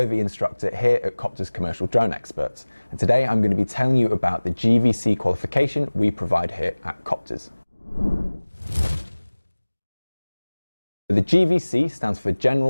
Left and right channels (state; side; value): inverted; both; correlation -1.00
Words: instructor here at Coptrz Commercial Drone Experts. And today I'm going to be telling you about the GVC qualification we provide here at Coptrz. The GVC stands for